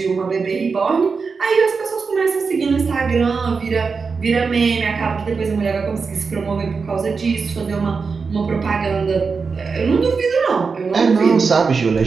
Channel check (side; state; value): left; quieter; 5.0 dB